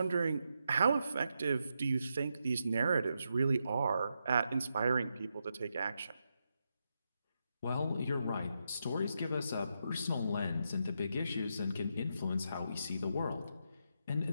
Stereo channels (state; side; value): inverted; both; correlation -0.84